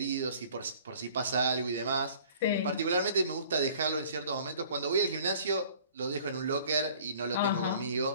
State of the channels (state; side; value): inverted; both; correlation -0.51